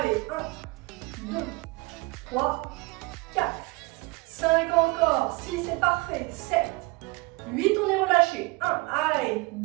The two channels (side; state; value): left; quieter; 25.2 dB